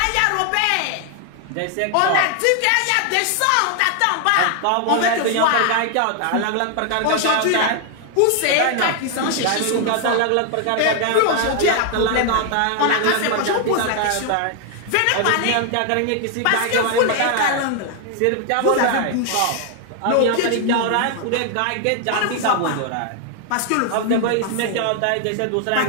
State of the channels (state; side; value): different; both; correlation 0.00